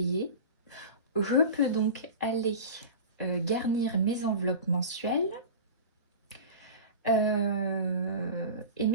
je peux donc aller garnir mes enveloppes mensuelles. Et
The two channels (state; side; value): inverted; both; correlation -0.32